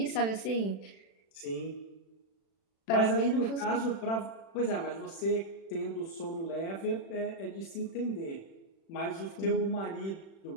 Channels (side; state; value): right; late; 36 ms